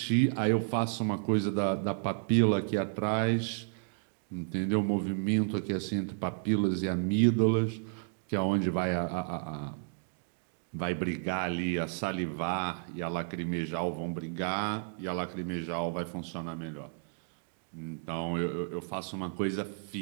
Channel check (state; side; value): silent; left; digital silence